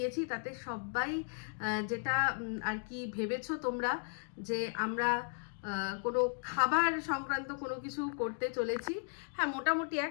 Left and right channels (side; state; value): right; silent; 54 dB below the other